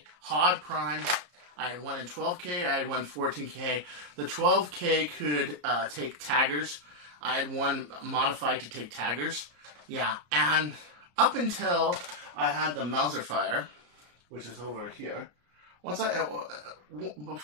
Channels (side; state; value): left; late; 34 ms